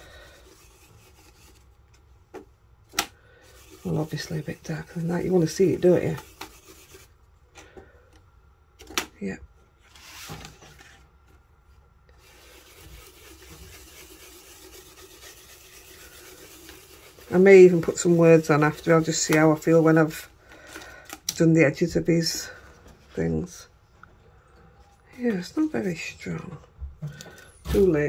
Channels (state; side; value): identical; both; correlation 1.00